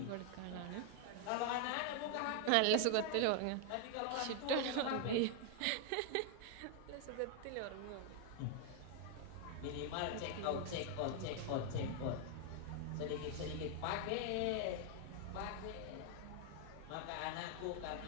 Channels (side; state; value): both; different; correlation 0.00